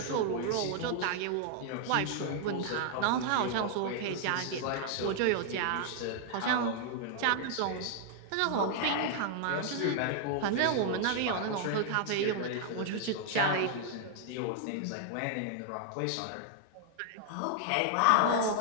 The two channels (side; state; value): both; different; correlation 0.00